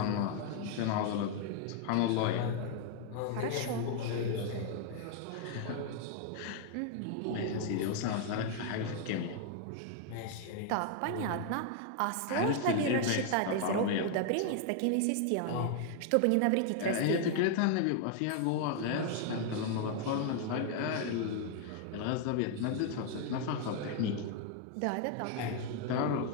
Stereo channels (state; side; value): different; both; correlation 0.00